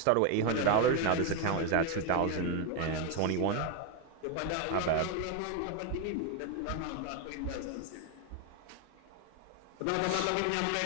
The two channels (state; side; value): different; both; correlation 0.02